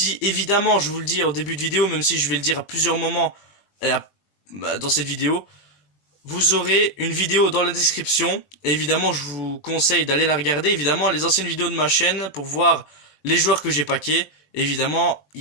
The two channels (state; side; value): late; right; 20 ms